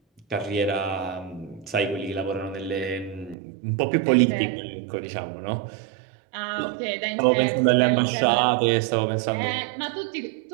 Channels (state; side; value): drops out; left; at 3.4 s